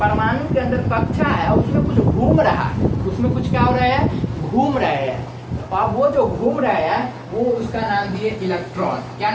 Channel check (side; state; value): both; identical; correlation 1.00